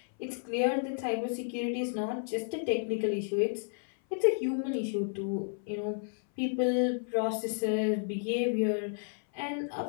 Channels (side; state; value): right; silent; 57 dB below the other